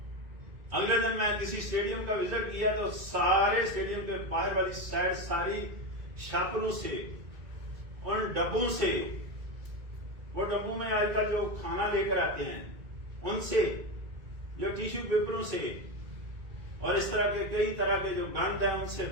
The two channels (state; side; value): late; left; 2.1 ms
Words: اگلے دن میں کسی اسٹیڈیم کا وزٹ کیا تو سارے اسٹیڈیم کے باہر والی سائڈ ساری شاپروں سے، ان ڈبوں سے، وہ ڈبوں میں آج کل جو کھانا لے کر آتے ہیں ان سے، جو ٹیشو پیپروں سے اور اس طرح کے کئی طرح کے جو گند ہیں ان سے